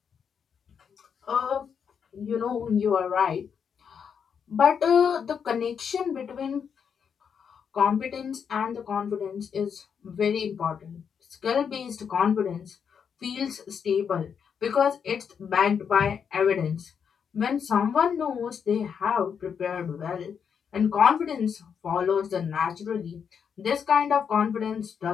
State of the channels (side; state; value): right; quieter; 7.1 dB